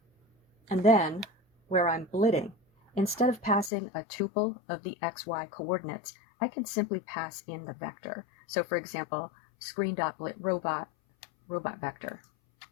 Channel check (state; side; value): drops out; right; at 3.7 s